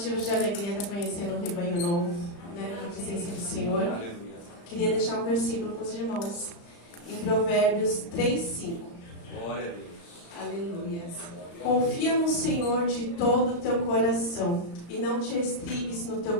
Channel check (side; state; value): right; late; 35 ms